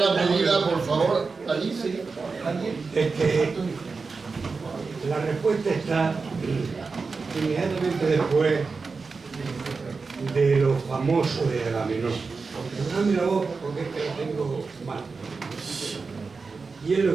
pedida, por favor. Alicia. La respuesta está inmediatamente después de lo famoso de Agamenón. No mira vos porque es que lo tengo mal. Y es lo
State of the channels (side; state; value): left; quieter; 4.5 dB